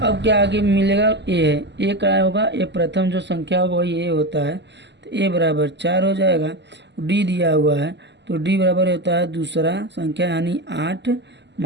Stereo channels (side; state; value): left; late; 0.51 ms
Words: क्या आगे मिलेगा, a है, a क्या होगा, a प्रथम जो संख्या होगा वही a होता है, तो a बराबर 4 हो जाएगा। d दिया हुआ है तो d बराबर होता है दूसरा संख्या यानी 8